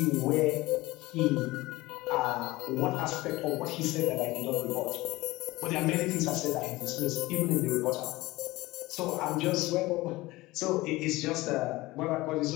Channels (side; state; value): right; quieter; 19.8 dB